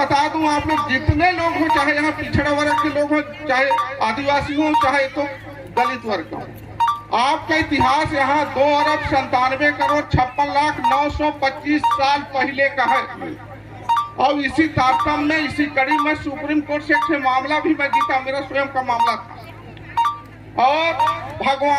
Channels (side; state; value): both; identical; correlation 1.00